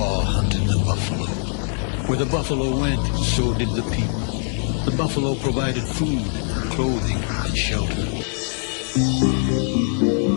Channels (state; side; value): silent; right; 63 dB below the other